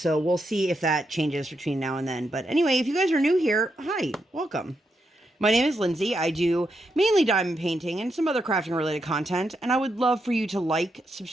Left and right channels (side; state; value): both; normal; correlation 0.83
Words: we'll see if that changes between now and then. But anyway, if you guys are new here, hi, welcome. My name is Lindsay. I do mainly diamond painting and some other crafting related content. And I would love for you to like,